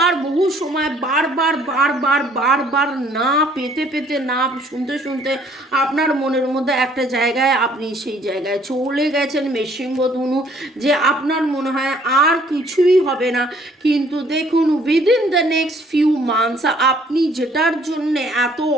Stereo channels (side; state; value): both; normal; correlation 0.61